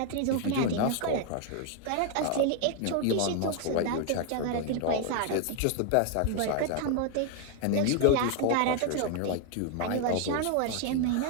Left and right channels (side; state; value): both; different; correlation 0.00